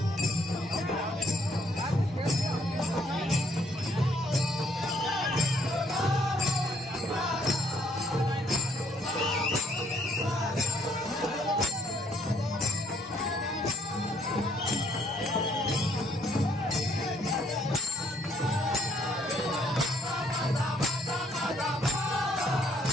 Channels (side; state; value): both; normal; correlation 0.67